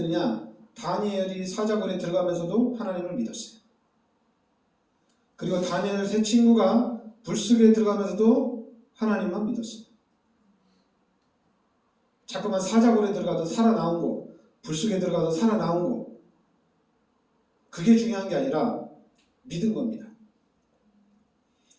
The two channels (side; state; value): both; identical; correlation 1.00